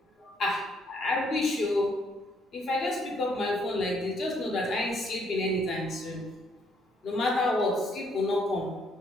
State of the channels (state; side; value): normal; both; correlation 0.69